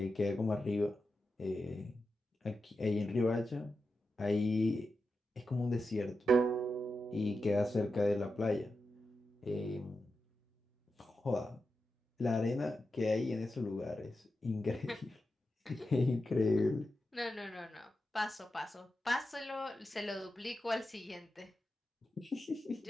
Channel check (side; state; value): both; normal; correlation 0.89